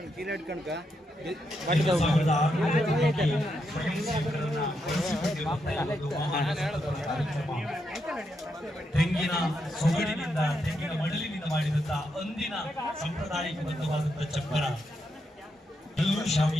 1600 ಸ್ವಯಂ ಸೇವಕರನ್ನ ತೆಂಗಿನ ಸೊಗಡಿನಿಂದ ತೆಂಗಿನ ಮಡಲಿನಿಂದ ಮಾಡಿದಂತಹ ಅಂದಿನ ಸಾಂಪ್ರದಾಯಿಕಬದ್ಧವಾದಂತಹ ಚಪ್ಪರ, ಎಲ್ಲೂ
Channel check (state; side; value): normal; both; correlation 0.82